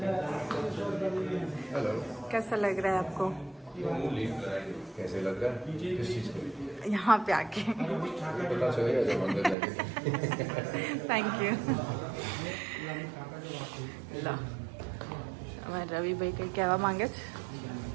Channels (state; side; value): drops out; left; at 9.6 s